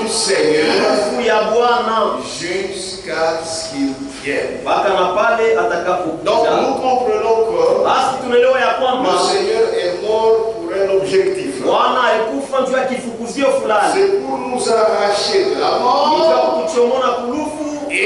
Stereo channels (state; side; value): identical; both; correlation 1.00